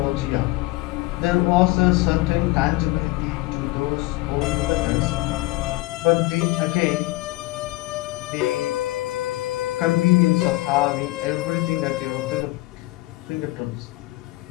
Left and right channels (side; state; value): right; quieter; 20.1 dB